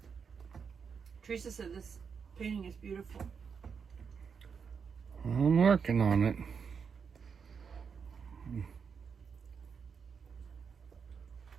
Teresa said this painting is beautiful. I'm working on it.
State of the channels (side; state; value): left; quieter; 6.2 dB